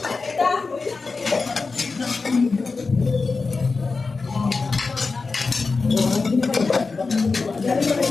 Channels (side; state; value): right; quieter; 4.2 dB